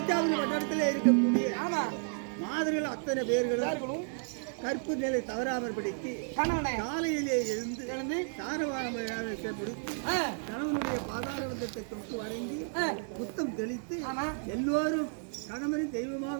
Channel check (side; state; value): left; silent; 56 dB below the other